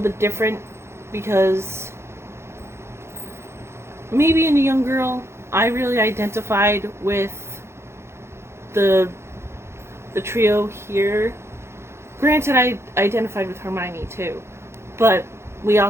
bit different because me being a young girl, I really identified with the trio here. Granted, I identified with Hermione too, but we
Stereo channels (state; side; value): late; left; 0.13 ms